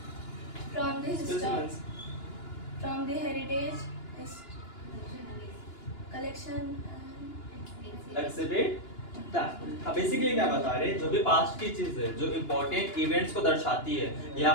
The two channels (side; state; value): right; late; 2.9 ms